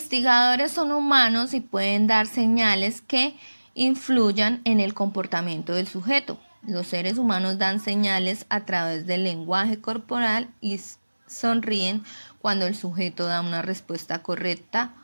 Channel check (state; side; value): inverted; both; correlation -1.00